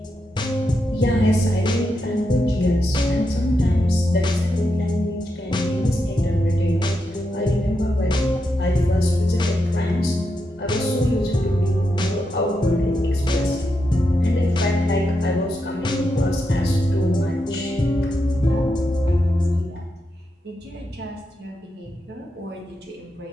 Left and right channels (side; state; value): both; normal; correlation 0.85